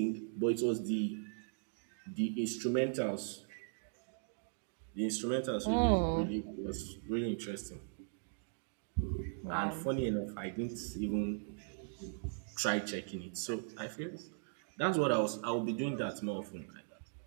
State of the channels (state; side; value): silent; left; digital silence